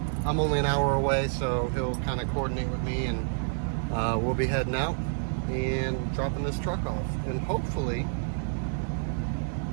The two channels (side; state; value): left; silent; digital silence